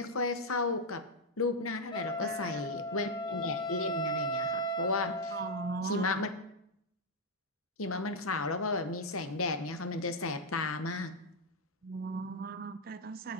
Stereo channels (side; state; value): both; normal; correlation 0.00